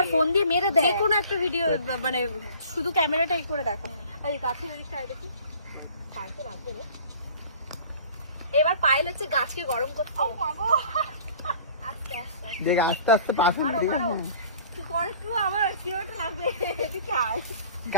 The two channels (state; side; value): inverted; both; correlation -0.48